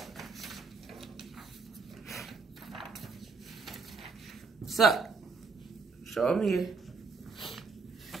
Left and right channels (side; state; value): left; quieter; 4.7 dB